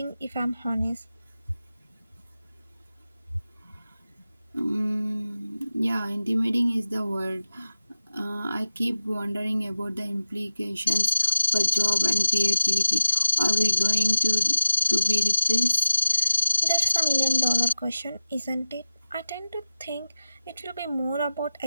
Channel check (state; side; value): inverted; both; correlation -0.89